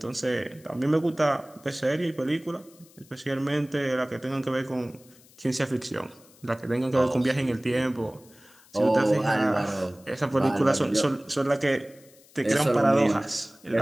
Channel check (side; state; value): left; noise; hiss, 27 dB below the sound